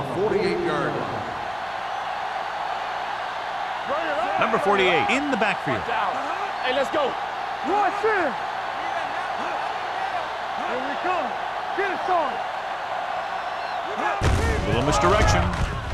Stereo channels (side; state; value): both; identical; correlation 1.00